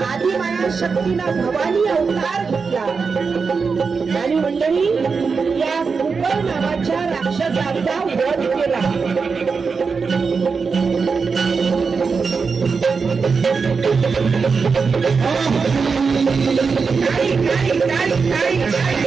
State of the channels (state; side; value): quieter; left; 5.1 dB